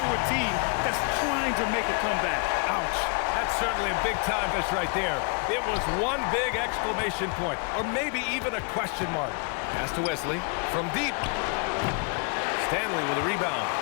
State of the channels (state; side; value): quieter; right; 37.4 dB